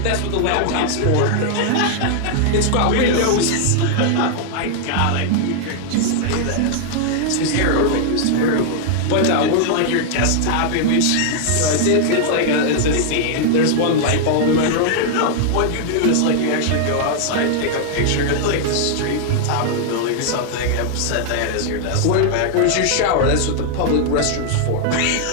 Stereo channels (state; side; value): different; both; correlation 0.00